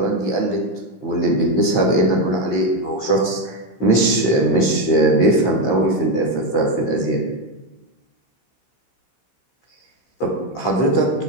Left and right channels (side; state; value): right; late; 15 ms